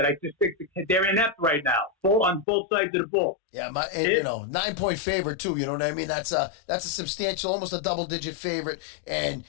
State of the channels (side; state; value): right; drops out; at 2.5 s